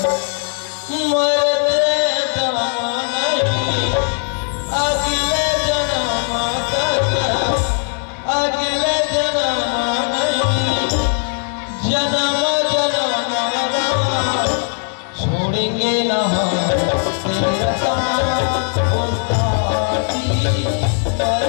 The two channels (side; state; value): right; silent; 55 dB below the other